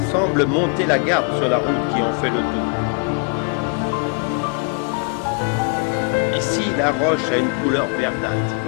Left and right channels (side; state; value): right; quieter; 37.9 dB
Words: semble monter la garde sur la route qui en fait le tour. Ici, la roche a une couleur verdâtre.